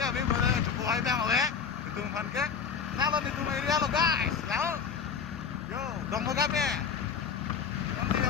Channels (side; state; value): right; quieter; 6.5 dB